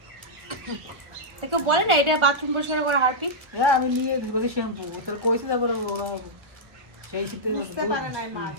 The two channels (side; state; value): left; late; 1.1 ms